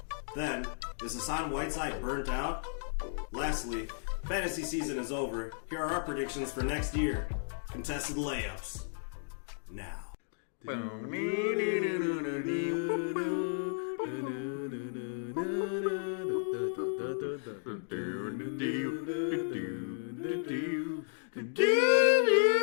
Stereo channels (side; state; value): right; silent; digital silence